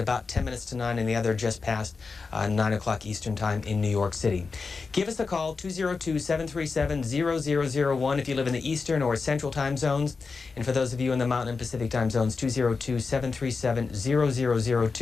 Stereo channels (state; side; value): quieter; right; 4.6 dB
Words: 10 minutes to 9 and the other just past 9 o'clock Eastern Time in New York City. Give us a call, 202-737-0001 if you live in the Eastern or Central time zones. And for those of you in the Mountain and Pacific time zones,